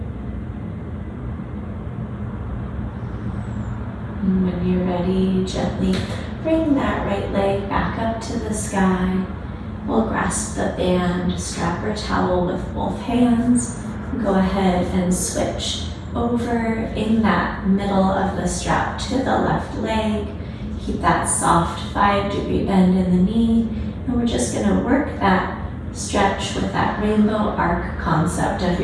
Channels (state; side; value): identical; both; correlation 1.00